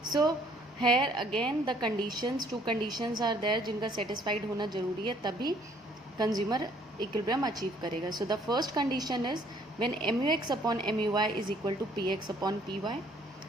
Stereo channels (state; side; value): normal; both; correlation 0.61